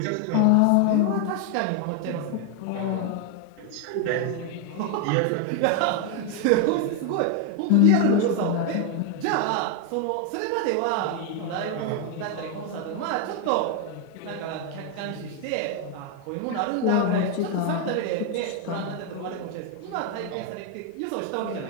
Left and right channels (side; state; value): both; different; correlation 0.01